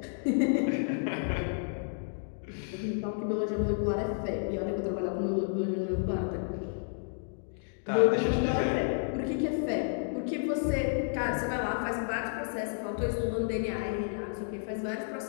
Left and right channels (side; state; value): right; silent; digital silence